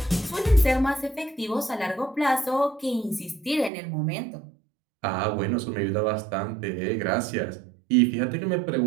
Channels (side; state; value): left; drops out; at 3.7 s